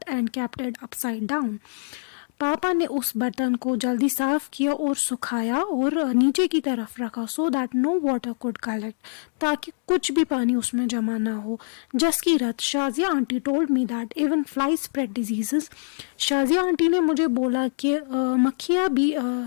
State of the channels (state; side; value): silent; right; digital silence